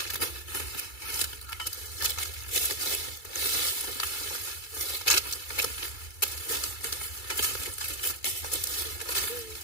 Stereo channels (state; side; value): late; right; 2.3 ms